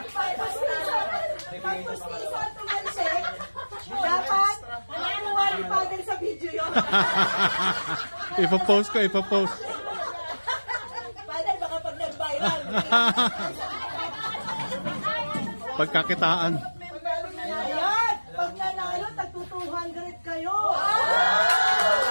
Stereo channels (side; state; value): both; inverted; correlation -1.00